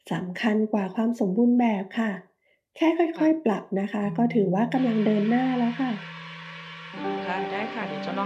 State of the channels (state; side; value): identical; both; correlation 1.00